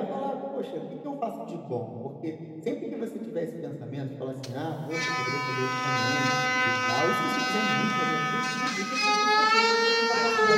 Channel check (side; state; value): both; identical; correlation 1.00